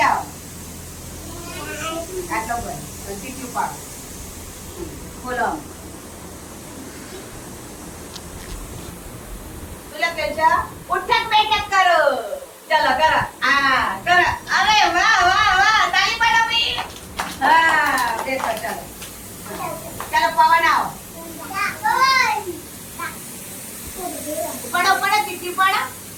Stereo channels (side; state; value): both; identical; correlation 1.00